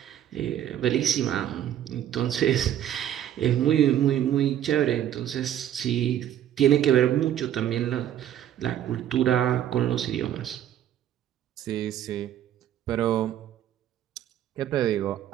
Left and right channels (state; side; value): quieter; left; 11.0 dB